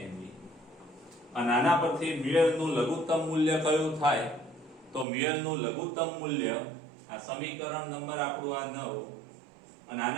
me. અને આના પરથી મ્યુએલ નું લઘુત્તમ મૂલ્ય કયું થાય? તો મ્યુએલ નું લઘુત્તમ મૂલ્ય આ સમીકરણ નંબર આપણું આ 9, અને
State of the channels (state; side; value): drops out; left; at 5.1 s